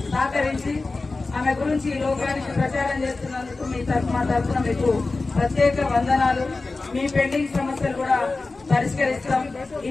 సహకరించి ఆమె గురించి ఈ లోకానికి ప్రచారం చేస్తున్నందుకు మా తరఫున మీకు ప్రత్యేక వందనాలు. మీ పెండింగ్ సమస్యలు కూడా పరిష్కరిస్తాం.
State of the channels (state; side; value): quieter; right; 3.6 dB